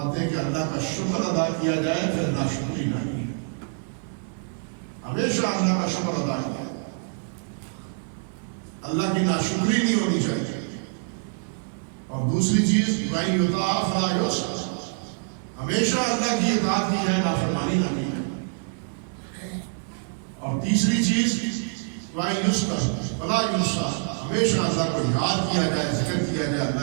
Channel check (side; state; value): left; silent; digital silence